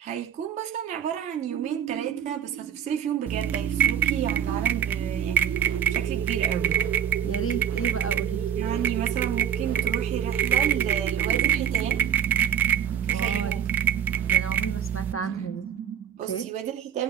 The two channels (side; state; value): left; quieter; 9.2 dB